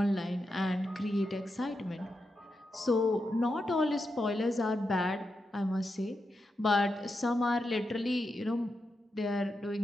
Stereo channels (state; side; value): normal; both; correlation 0.87